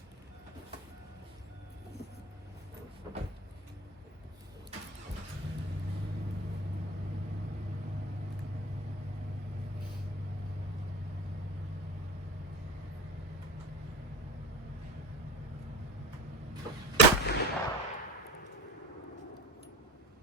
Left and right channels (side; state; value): both; normal; correlation 0.31